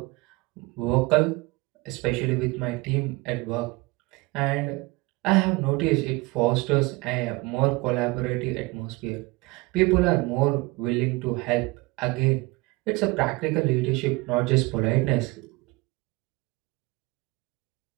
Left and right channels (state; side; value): quieter; left; 23.7 dB